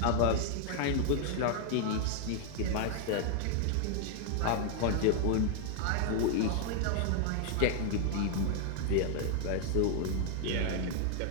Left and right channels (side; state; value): both; different; correlation 0.00